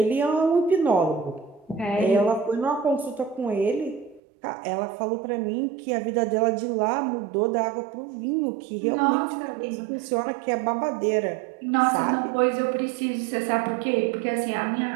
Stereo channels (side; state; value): left; drops out; at 4.2 s